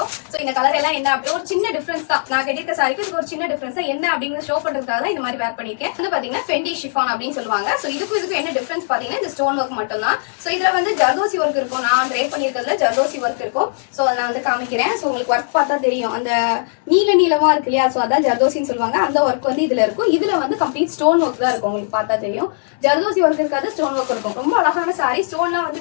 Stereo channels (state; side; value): silent; right; 62 dB below the other